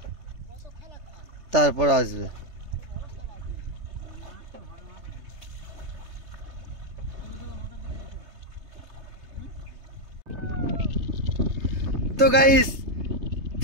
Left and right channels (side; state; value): left; late; 3.3 ms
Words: তারপর আসবে। তো গাইস,